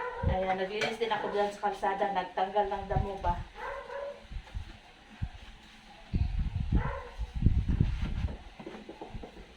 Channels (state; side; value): identical; both; correlation 1.00